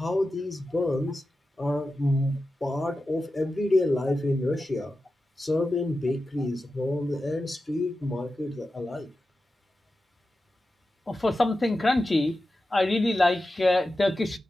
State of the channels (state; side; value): normal; both; correlation 0.92